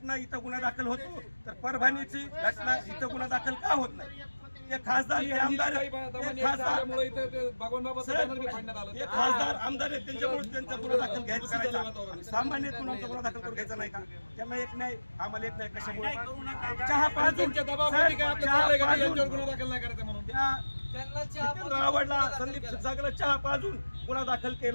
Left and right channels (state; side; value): inverted; both; correlation -1.00